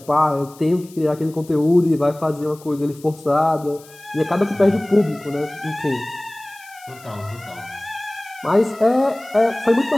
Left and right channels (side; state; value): left; noise; hiss, 23 dB below the sound